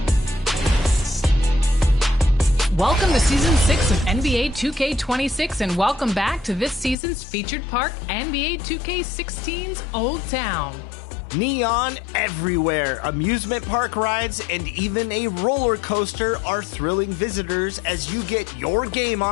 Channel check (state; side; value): drops out; right; at 7.0 s